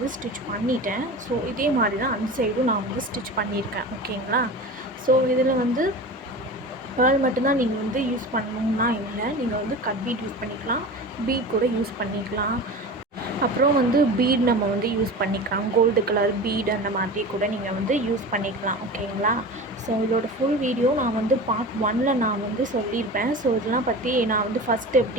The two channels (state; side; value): normal; both; correlation 0.32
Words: ஸ்டிச் பண்ணிட்டேன். ஸோ இதே மாதிரி தான் அந்த சைடும் நான் ஸ்டிச் பண்ணியிருக்கேன். ஓகேங்களா? ஸோ இதில் பேர்ல் மட்டும்தான் நீங்கள் யூஸ் பண்ணணுன்னா இல்லை, நீங்கள் கட் பீட் யூஸ் பண்ணிக்கலாம், பீட் கூட யூஸ் பண்ணிக்கலாம். அப்புறம் பீட் நம்ம யூஸ் பண்ணிக்கலாம், கோல்டு கலர் பீட் அந்த மாதிரி கூட நீங்கள் யூஸ் பண்ணிக்கலாம். ஓகேங்களா? ஸோ இதோட ஃபுல் வீடியோ நான் பார்ட் 1ல் நான் சொல்லியிருப்பேன். ஸோ இதெல்லாம் பற்றி நான் ஃபஸ்ட்டு